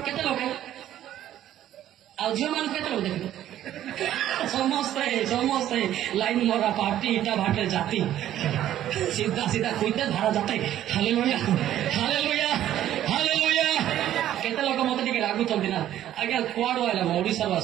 କେତେ ଲୋକ? ଆଉ ଝିଅମାନଙ୍କୁ କେତେ ଲୋକ ଦେଖିବେ? ସମସ୍ତେ ଲାଇନ ମରା ପାର୍ଟି ଇଟା ଭାଟରେ ଜାତି ସିଧା ସିଧା କୁଇତେ ଧାରା ଜାତେ। Hallelujah hallelujah hallelujah. କେତେ ଲୋକ ମତେ ଟିକେ ରାଗୁଛନ୍ତି ନା ଆଜ୍ଞା କୁଆଡୁ ଆଇଲା? ମୁଁ ଓଡିଶାରୁ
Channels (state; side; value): quieter; left; 12.1 dB